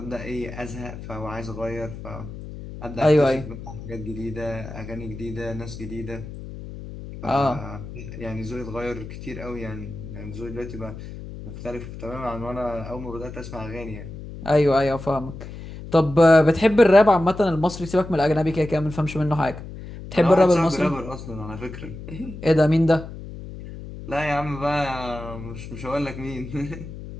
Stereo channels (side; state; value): left; noise; hum, 12 dB below the sound